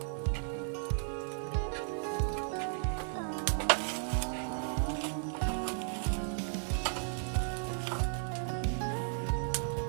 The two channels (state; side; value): silent; left; digital silence